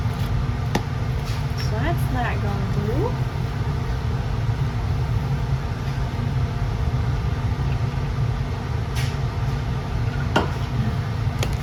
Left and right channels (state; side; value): identical; both; correlation 1.00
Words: So that's that gone through.